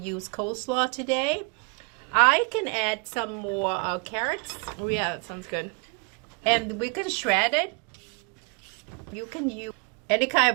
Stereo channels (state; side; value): quieter; left; 32.6 dB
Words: coleslaw today. I can add some more carrots. Oh yeah, that sounds good. And we can shred it. You can use any kind